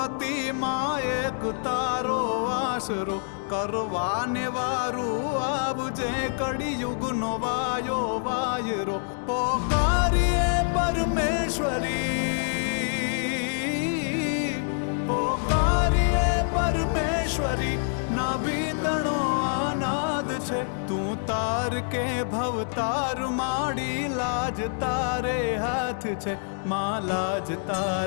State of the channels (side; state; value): right; silent; digital silence